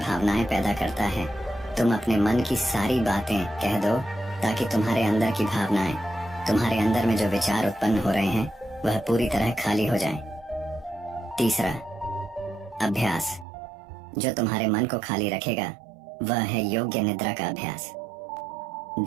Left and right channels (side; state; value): left; drops out; at 13.5 s